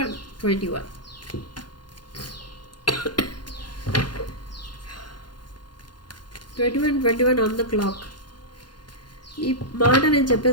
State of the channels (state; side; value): late; right; 0.71 ms